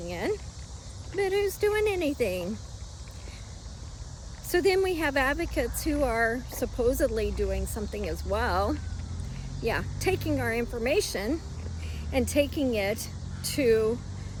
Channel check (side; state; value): both; identical; correlation 1.00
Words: in. But who's doing anything? So then we have advocates who are supposedly doing something as well. Yeah, taking our information and taking it to